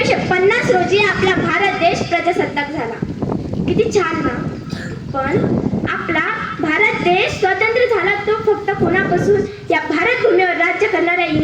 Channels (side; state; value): both; identical; correlation 1.00